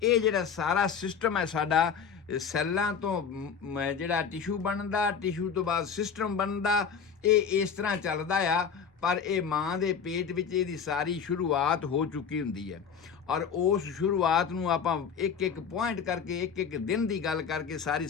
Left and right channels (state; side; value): quieter; right; 6.7 dB